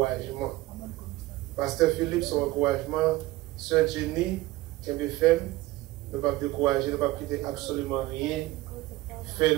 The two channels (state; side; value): quieter; left; 18.2 dB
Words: Pasteur Philippe, son encouragement, Sœur Jenny, KBFM, ne pas décourager, ne pas quitter absolument rien,